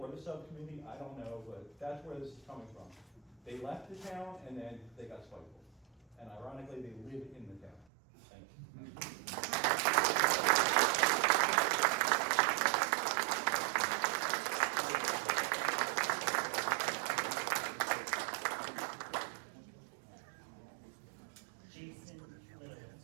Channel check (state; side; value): drops out; left; at 7.9 s